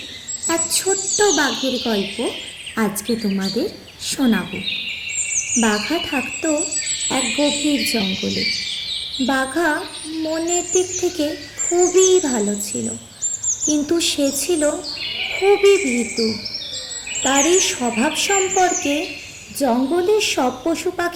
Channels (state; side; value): identical; both; correlation 1.00